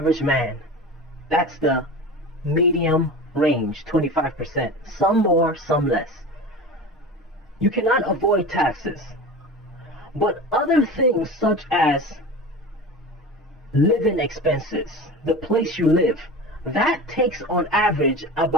man. That's the medium range, 25%. Some more, some less. You cannot avoid taxes. But other things such as living expenses, the place you live, that takes on average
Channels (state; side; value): normal; both; correlation 0.32